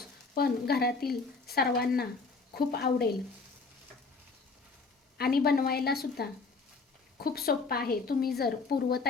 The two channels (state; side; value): quieter; right; 4.2 dB